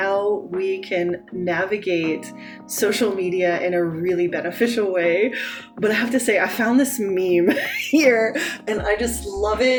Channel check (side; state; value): both; identical; correlation 1.00